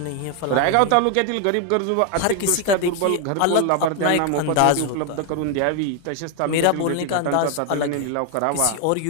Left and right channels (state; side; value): different; both; correlation 0.01